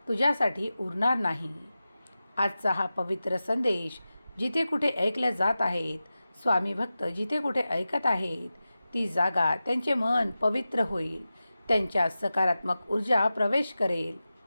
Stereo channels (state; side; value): inverted; both; correlation -0.94